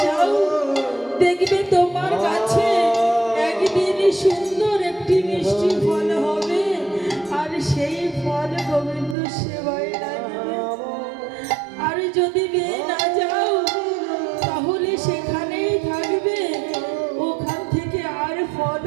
যাও, দেখবে তোমার কাছে একদিন সুন্দর একটি মিষ্টি ফল হবে, আর সেই ফল গোবিন্দ সেবায় লাগবে। আর যদি পেয়ে না যাও তাহলে সেখানেই থাকবে, ওখান থেকে আর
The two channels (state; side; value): drops out; left; at 9.2 s